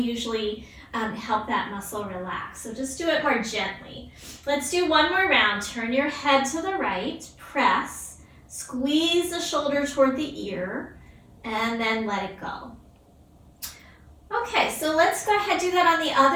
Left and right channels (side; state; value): both; identical; correlation 1.00